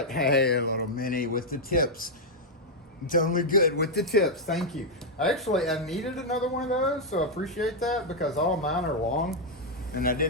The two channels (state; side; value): normal; both; correlation -0.02